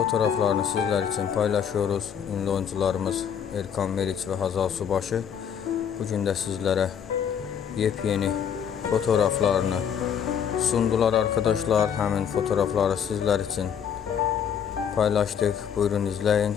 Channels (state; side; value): quieter; right; 8.0 dB